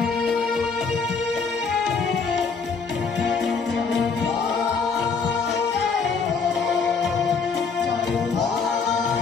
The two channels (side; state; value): right; quieter; 5.1 dB